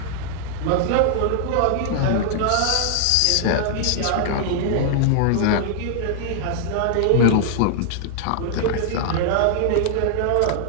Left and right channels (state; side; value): different; both; correlation -0.01